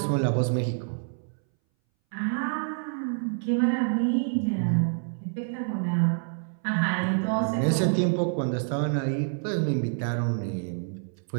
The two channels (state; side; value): silent; left; 60 dB below the other